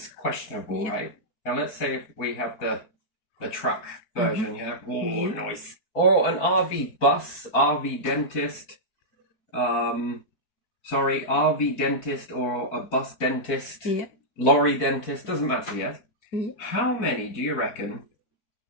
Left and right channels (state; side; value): late; right; 4.4 ms